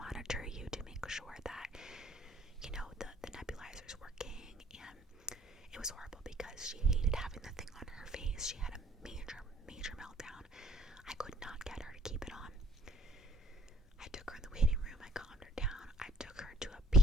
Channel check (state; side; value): normal; both; correlation 0.59